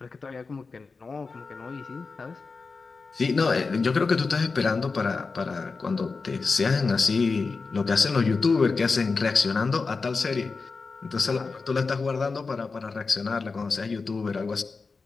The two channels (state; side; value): quieter; right; 4.4 dB